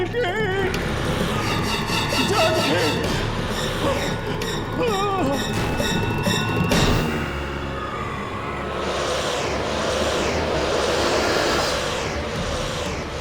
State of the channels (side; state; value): both; identical; correlation 1.00